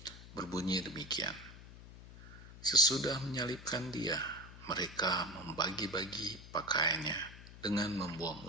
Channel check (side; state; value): left; noise; hum, 16 dB below the sound